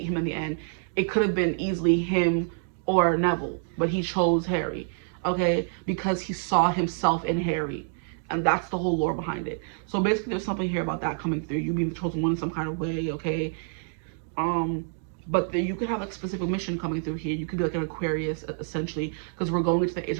him in the end. It could have been easily him or Neville, but he chose Harry, okay, because he saw himself in Harry. And that's the whole lore behind it. So basically there's something here about that coming through. You being the chosen one in some kind of way, okay? But you could have like a specific mission coming through here. You could be like an Aquarius, essentially, because we're going into the age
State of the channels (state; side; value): silent; left; digital silence